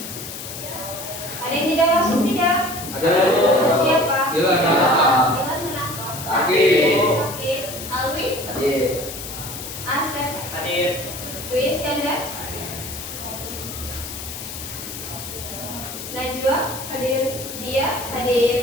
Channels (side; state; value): left; noise; hiss, 9 dB below the sound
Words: ada yang tidak masuk tidak? Ada. Siapa? Dilan. Dilan kenapa? Sakit. Alwi? Hadir. Asep? Hadir. Dwi Iskandar? Najwa? Hadir. Dia?